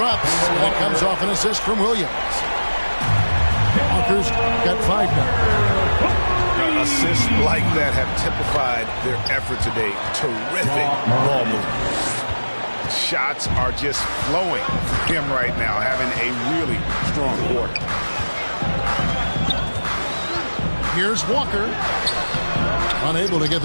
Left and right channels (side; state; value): both; inverted; correlation -1.00